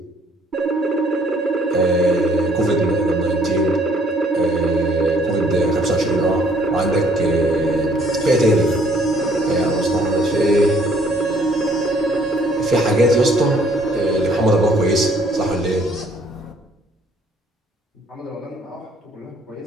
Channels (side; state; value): both; normal; correlation 0.62